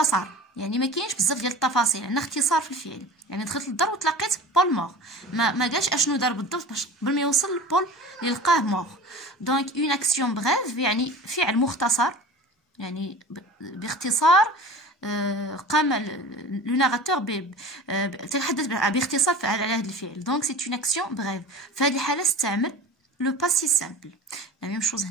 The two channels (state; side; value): normal; both; correlation 0.37